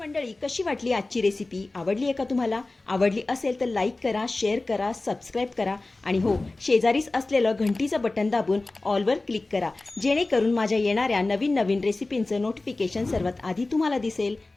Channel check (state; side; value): quieter; right; 3.1 dB